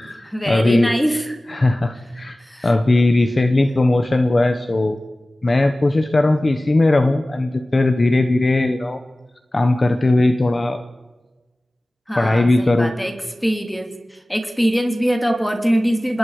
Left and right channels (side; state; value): both; normal; correlation 0.97